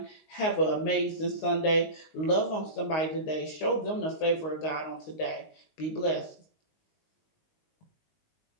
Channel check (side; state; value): right; late; 19 ms